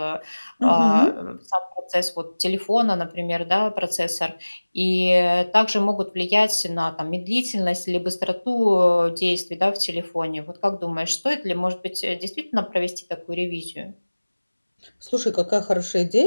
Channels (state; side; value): inverted; both; correlation -1.00